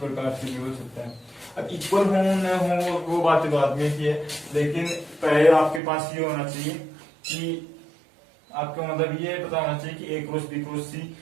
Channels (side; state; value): left; drops out; at 5.8 s